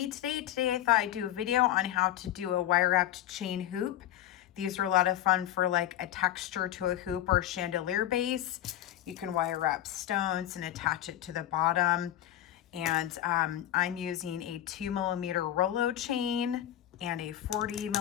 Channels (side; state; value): right; quieter; 12.4 dB